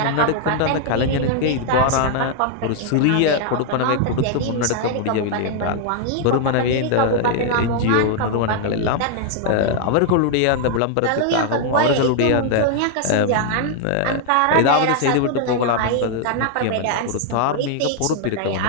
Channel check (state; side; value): different; both; correlation 0.00